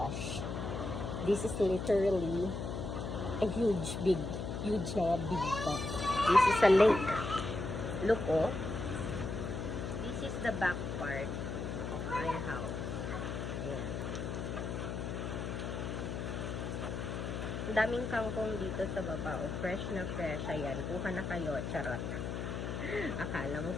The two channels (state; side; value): noise; left; hum, 4 dB below the sound